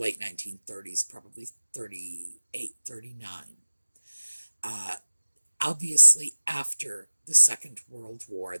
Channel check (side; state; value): both; inverted; correlation -1.00